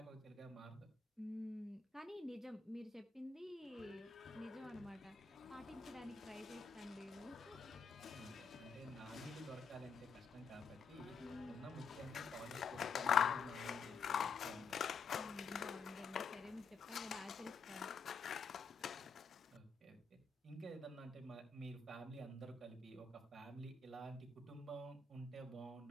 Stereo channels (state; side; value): quieter; right; 5.1 dB